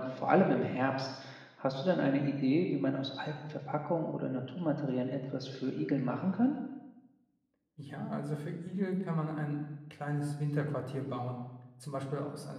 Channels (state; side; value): identical; both; correlation 1.00